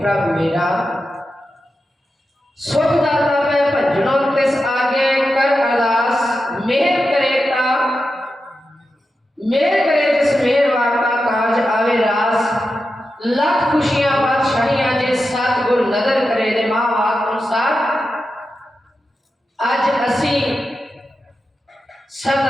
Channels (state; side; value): normal; both; correlation 0.90